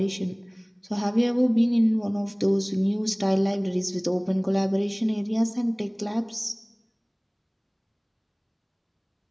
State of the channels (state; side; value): identical; both; correlation 1.00